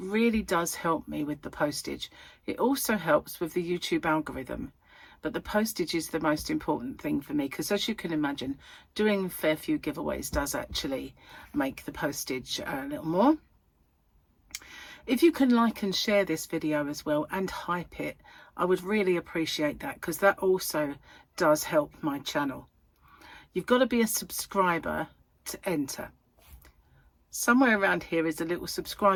does help me with the postage. It also helps with the YouTube algorithm. But the postage is the most important thing for me, because as you can imagine, doing a fair few giveaways does actually make the postage a little more. If you can like and share this video as well and hype it, I would really appreciate that, because that also does help my channel. You've got to be a subscriber to enter. Somewhere around here is a little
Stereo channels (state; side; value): identical; both; correlation 1.00